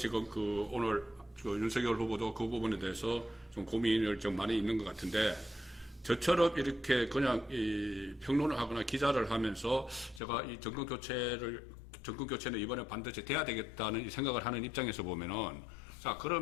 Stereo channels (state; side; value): drops out; right; at 10.2 s